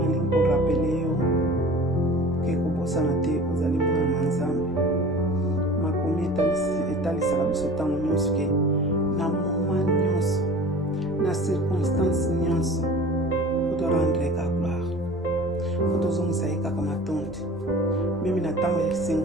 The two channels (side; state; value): both; normal; correlation 0.41